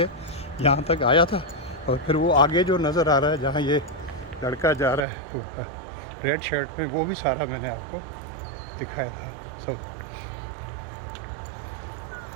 यहाँ तक आया था। और फिर वो आगे जो नज़र आ रहा है जहाँ ये लड़का जा रहा है तो रेड शर्ट में, वो भी सारा मैंने आपको दिखाया था सब।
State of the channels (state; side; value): drops out; left; at 5.1 s